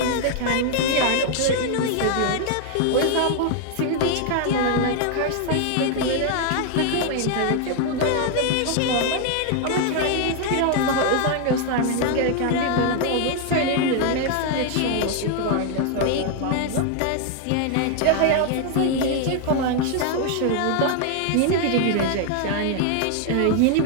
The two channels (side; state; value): both; different; correlation 0.00